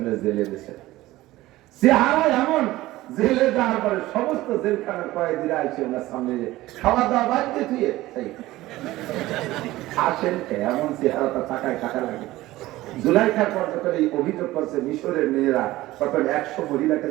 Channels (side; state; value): left; quieter; 17.2 dB